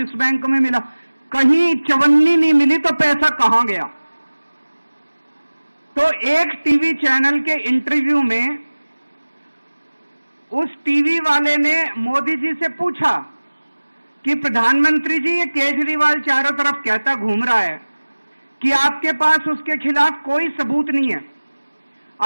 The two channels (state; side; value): inverted; both; correlation -1.00